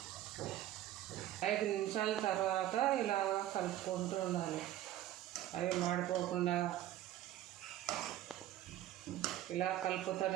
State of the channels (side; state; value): left; quieter; 13.4 dB